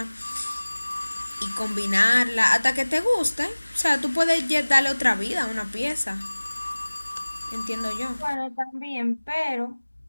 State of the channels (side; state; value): both; inverted; correlation -1.00